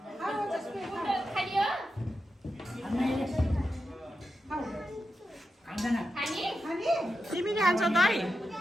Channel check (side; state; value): both; normal; correlation 0.89